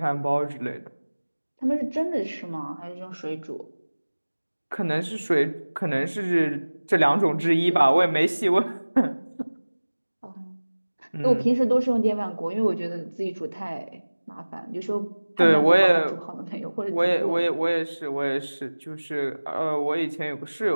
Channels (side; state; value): both; inverted; correlation -1.00